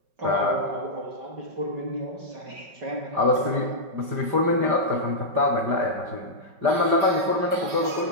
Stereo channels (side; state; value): left; late; 5.4 ms